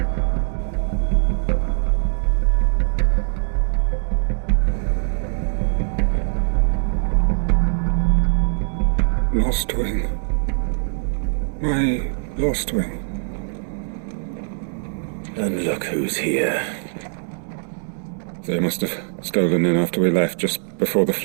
Lostwing. My Lostwing. And look who's here. They must have stolen in after we left, just before the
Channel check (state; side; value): silent; left; digital silence